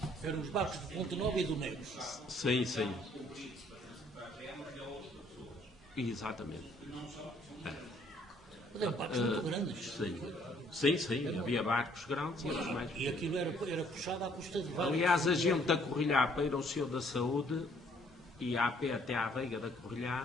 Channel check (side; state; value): both; normal; correlation 0.63